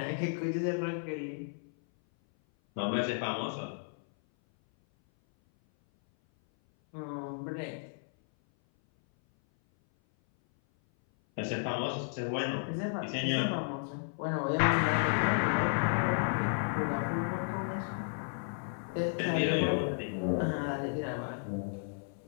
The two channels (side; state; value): right; silent; 56 dB below the other